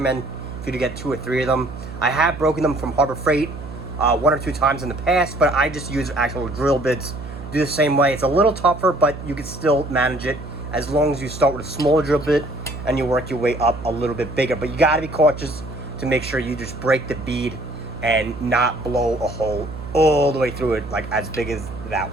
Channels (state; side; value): noise; right; hum, 11 dB below the sound